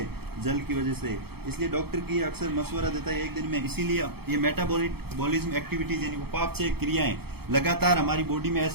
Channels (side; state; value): left; late; 0.96 ms